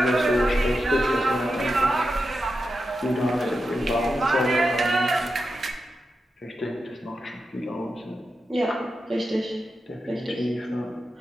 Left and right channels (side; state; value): both; normal; correlation 0.89